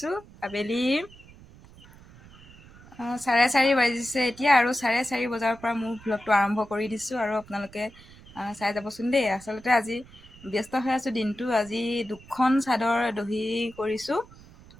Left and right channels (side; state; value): right; noise; rumble, 22 dB below the sound